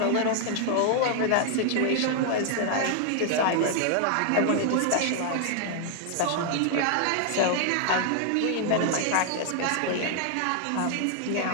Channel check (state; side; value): different; both; correlation 0.00